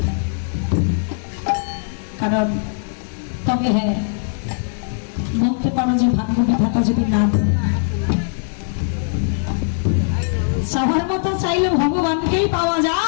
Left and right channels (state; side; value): silent; right; digital silence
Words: কারণ তবে হ্যাঁ, বলতে পারো যে ভাগ্য বিধাতা যদি না দেয়, চাওয়ার মতো চাইলে ভগবানকেই পাওয়া